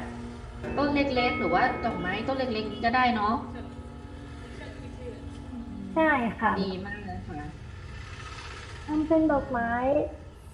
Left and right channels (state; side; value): identical; both; correlation 1.00